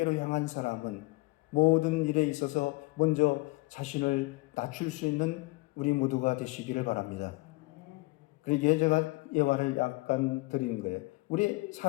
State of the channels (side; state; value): right; quieter; 23.5 dB